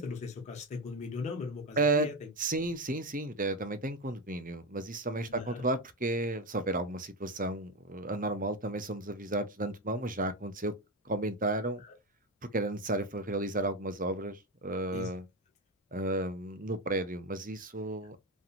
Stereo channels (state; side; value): normal; both; correlation 0.14